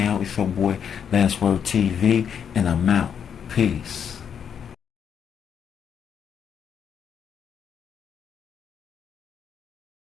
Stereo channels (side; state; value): right; quieter; 7.8 dB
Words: It's your boy Last Word TV, and I'm out. Peace.